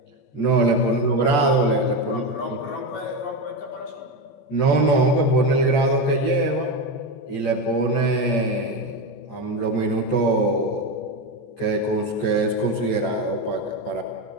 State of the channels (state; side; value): late; right; 14 ms